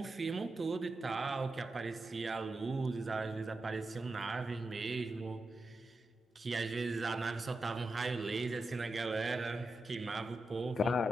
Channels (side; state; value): both; normal; correlation 0.89